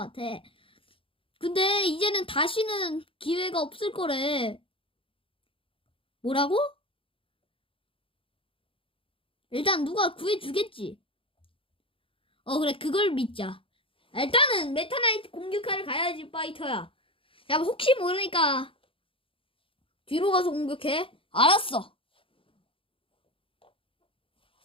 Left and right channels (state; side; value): late; right; 0.26 ms